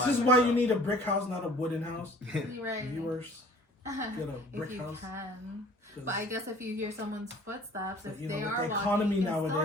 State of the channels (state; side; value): normal; both; correlation 0.50